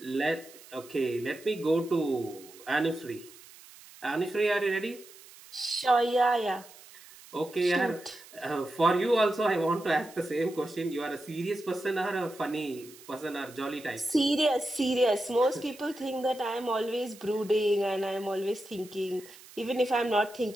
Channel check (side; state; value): right; noise; hiss, 21 dB below the sound